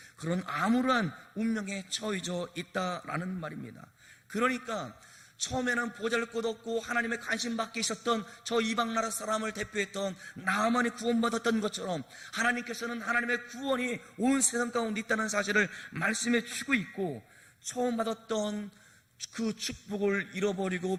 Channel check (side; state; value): both; identical; correlation 1.00